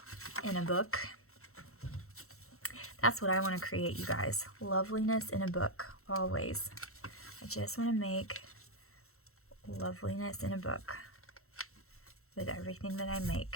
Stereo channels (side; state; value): right; late; 0.63 ms